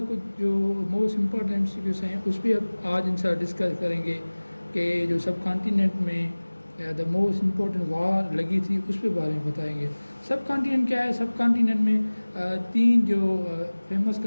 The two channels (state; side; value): inverted; both; correlation -1.00